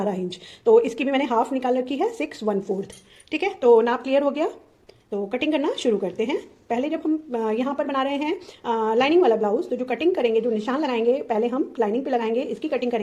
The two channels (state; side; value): identical; both; correlation 1.00